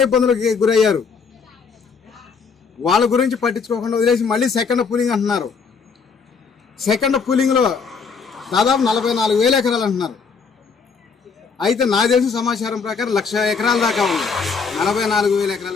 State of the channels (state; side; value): quieter; right; 5.4 dB